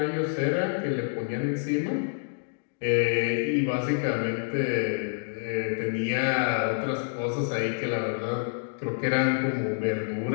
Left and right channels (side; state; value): right; silent; digital silence